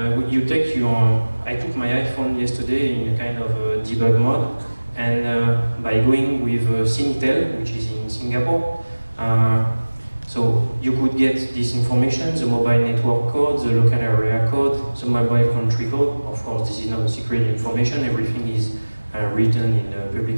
you take your, I took my iPhone yesterday in a kind of debug mode, and by going with SyScan'11, which is in Singapore, so you could get this information, the mobile network code, the local area code, the mobile country code. Of course, this is not secret information, everything is written in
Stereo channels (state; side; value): inverted; both; correlation -1.00